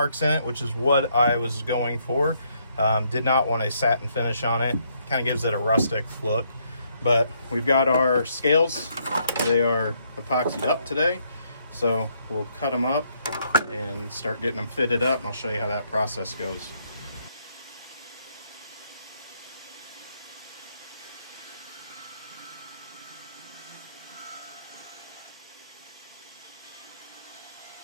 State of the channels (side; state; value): both; inverted; correlation -0.72